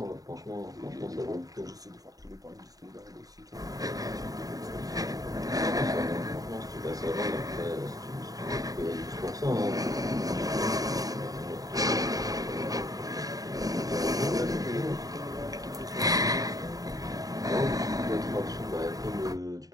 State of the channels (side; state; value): left; late; 0.18 ms